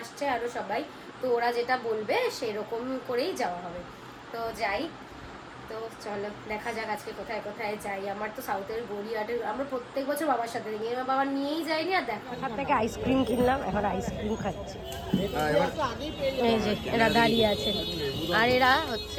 আরও সবাই, তো ওরা যেটা বলবে সেরকম করেই যাওয়া হবে। তো যাই, তো চলো দেখা যাক আজকে কোথায় কোথায় যাই। আমার তো সাউথের গড়িয়াহাটের আমরা প্রত্যেক বছর বাবার সাথে দেখি, আমার বাবা নিয়েই যায়নি। আর দেখো ওখান থেকে আইসক্রিম কিনলাম, এখন আইসক্রিম খাচ্ছি। এই যে এরা দাঁড়িয়ে আছে, আর এরা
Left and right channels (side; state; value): both; identical; correlation 1.00